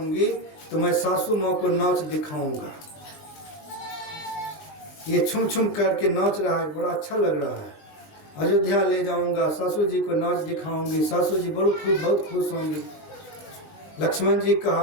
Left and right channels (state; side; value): late; right; 19 ms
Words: तो मैं सासू माँ को नाच दिखाऊंगा। ये छुम छुम करके नाच रहा है, बड़ा अच्छा लग रहा है। अयोध्या ले जाऊंगा, सासू जी को नाच दिखाऊंगी, सासू जी बहुत खुश होंगी। लक्ष्मण जी